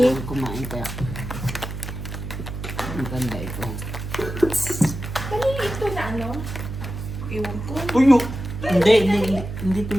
Kumain kaya. Ang ganda ito. Kanina ito na ano? Iwan ko. Tuyo. Hindi to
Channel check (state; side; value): noise; right; hum, 7 dB below the sound